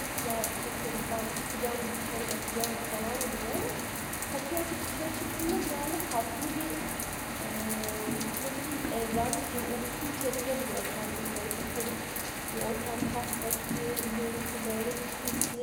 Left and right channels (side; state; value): both; identical; correlation 1.00